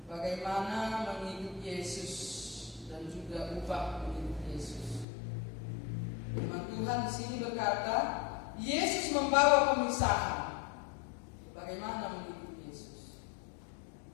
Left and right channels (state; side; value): drops out; right; at 5.1 s